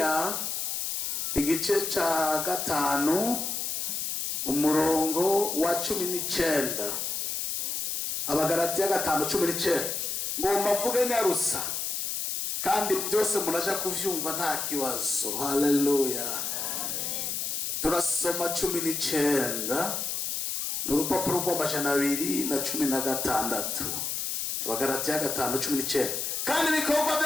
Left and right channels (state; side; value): noise; left; hiss, 2 dB below the sound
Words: igice ca 5 umurongo wa 19. Abagalatiya 5:19. Ngomba mvuge nyarusa kandi byose munaja kuvyumva nta kibazo. Haleluya. Turasoma 19 n'urupapuro rw'amajana 216. Abagalatiya 5:19. Kandi ibikorwa